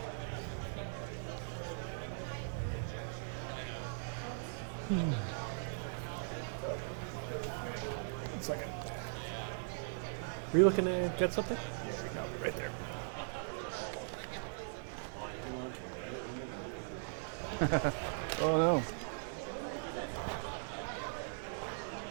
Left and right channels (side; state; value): left; silent; digital silence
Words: Are you looking to get something? Yeah, right there. Oh no.